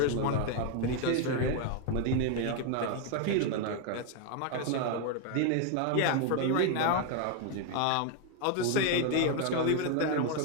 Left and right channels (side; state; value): both; different; correlation 0.01